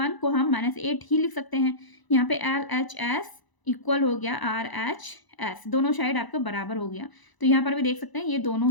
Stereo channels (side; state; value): right; late; 1.0 ms